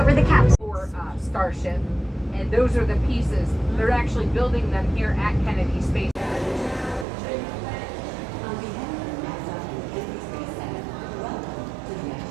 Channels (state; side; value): drops out; left; at 7.1 s